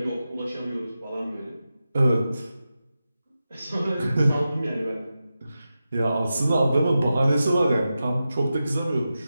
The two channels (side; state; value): both; inverted; correlation -0.91